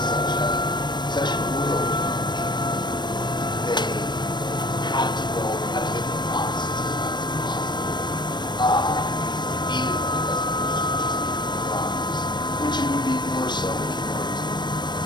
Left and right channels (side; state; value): right; late; 0.22 ms